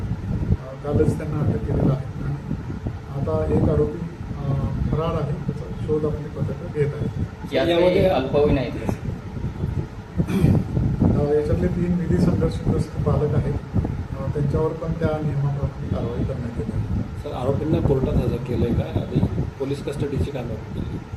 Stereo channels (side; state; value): both; identical; correlation 1.00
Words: कालच त्यांना अटक केलेलं आहे आणि आता एक आरोपी फरार आहे, त्याचा शोध आपली पथकं घेत आहे. यामध्ये अल्पवयीन आहेत याच्यातले 3 विधी संघर्षग्रस्त पालक आहेत, त्यांच्यावर पण त्या नियमाप्रमाणे कारवाई करण्यात येत आहे. सर आरोपींना कोर्टात हजर केलं आहे का आधी पोलीस कस्टडीची काय मागणी केली?